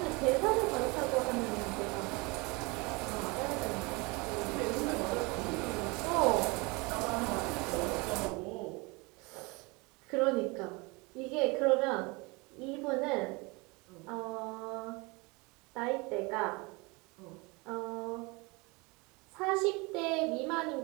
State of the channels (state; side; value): quieter; left; 26.8 dB